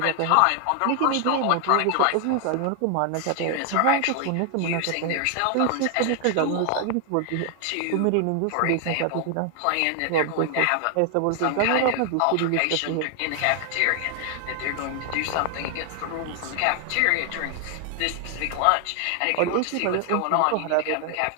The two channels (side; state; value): both; different; correlation 0.00